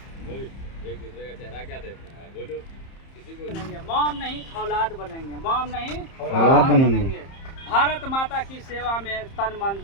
एक दूसरे का चेहरा क्या देखना है, बोलो। किसी को बनेंगे मॉम नहीं औलाद बनेंगे, मॉम नहीं औलाद बनेंगे। भारत माता की सेवा में तन मन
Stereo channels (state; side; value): late; right; 30 ms